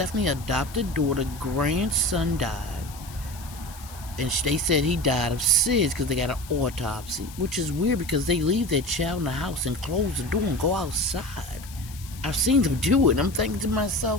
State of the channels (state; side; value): noise; left; hiss, 18 dB below the sound